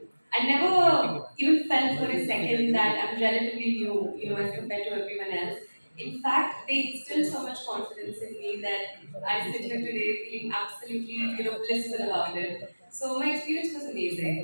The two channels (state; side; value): inverted; both; correlation -1.00